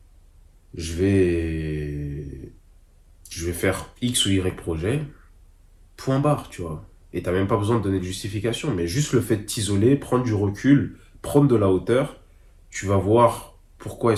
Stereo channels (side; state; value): both; identical; correlation 1.00